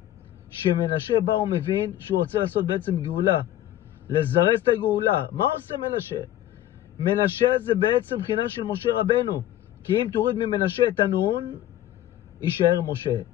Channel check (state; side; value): quieter; right; 13.0 dB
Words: שמנשה בא הוא מבין שהוא רוצה לעשות בעצם גאולה, לזרז את הגאולה. מה עושה מנשה? מנשה זה בעצם בחינה של משה רבנו, כי אם תוריד ממנשה את הנון יישאר משה.